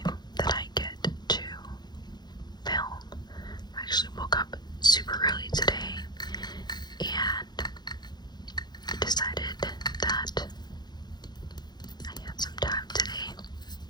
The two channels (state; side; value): late; right; 0.20 ms